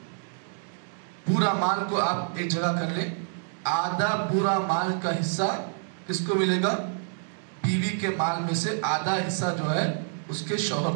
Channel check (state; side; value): silent; left; digital silence